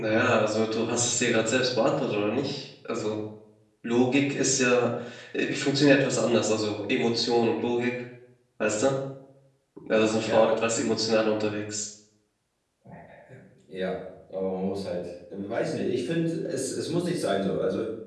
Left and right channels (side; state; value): both; identical; correlation 1.00